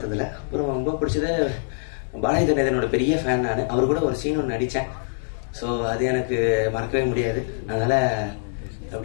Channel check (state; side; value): silent; right; digital silence